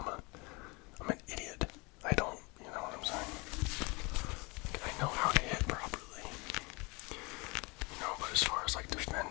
I'm an idiot. I don't, you know what I'm saying? I know how to hit properly. But as far as like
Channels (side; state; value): right; quieter; 27.2 dB